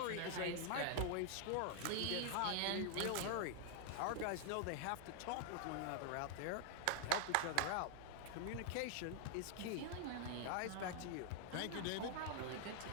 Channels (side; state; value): both; different; correlation 0.00